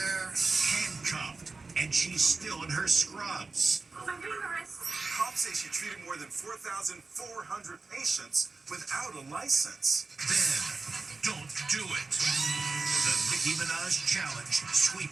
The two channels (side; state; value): left; quieter; 3.9 dB